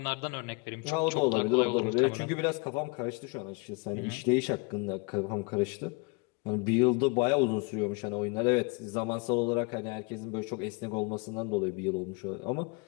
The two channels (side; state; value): right; quieter; 30.8 dB